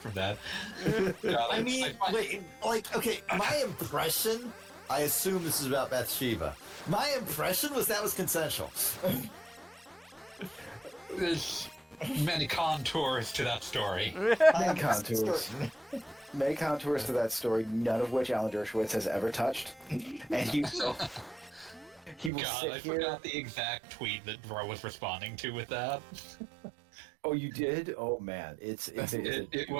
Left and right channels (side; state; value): left; drops out; at 22.3 s